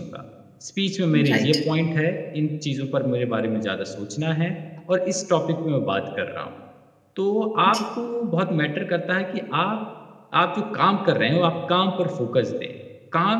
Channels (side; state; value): both; identical; correlation 1.00